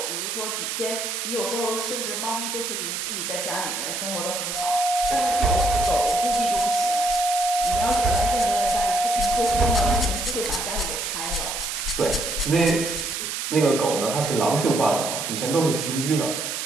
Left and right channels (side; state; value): right; noise; hiss, 3 dB below the sound